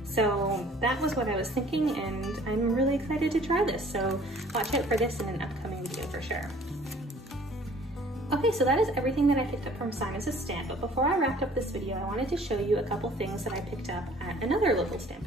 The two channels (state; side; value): normal; both; correlation 0.53